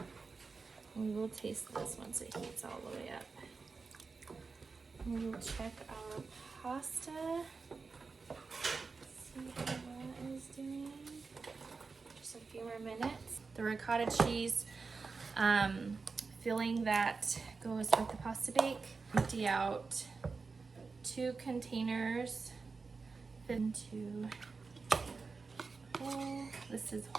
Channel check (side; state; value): left; quieter; 4.5 dB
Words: and we will taste this once it heats all the way up. And we will check our pasta. See how that is doing. Just a few more minutes. The ricotta cheese filling that goes with the pasta bake. Empty out 2 containers into whole. This is